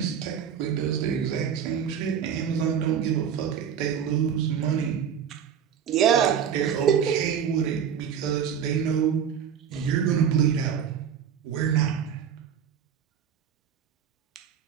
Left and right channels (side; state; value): left; quieter; 8.1 dB